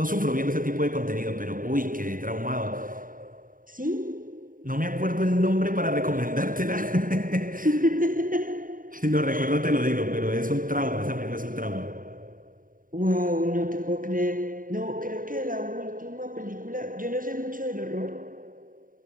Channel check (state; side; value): late; left; 0.40 ms